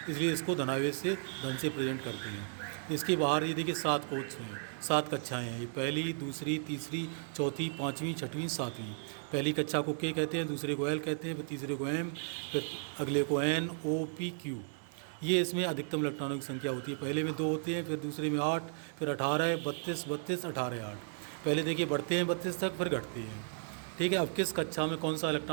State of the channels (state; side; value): silent; left; digital silence